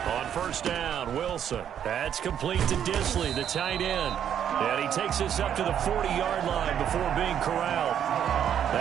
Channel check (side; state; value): left; quieter; 9.3 dB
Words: On first down, Wilson. That's complete to Disley, the tight end. And he takes us up to the 40-yard line before being corralled.